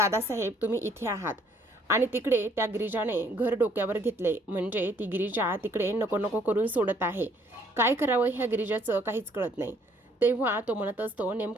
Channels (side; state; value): both; normal; correlation 0.64